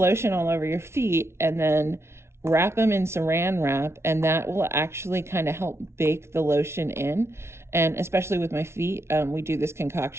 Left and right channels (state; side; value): late; left; 0.13 ms